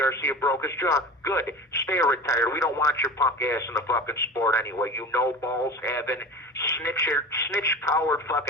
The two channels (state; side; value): normal; both; correlation 0.33